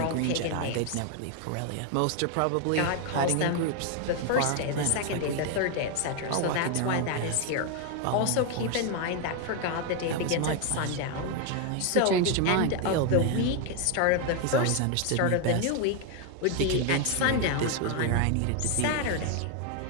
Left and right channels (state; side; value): different; both; correlation 0.01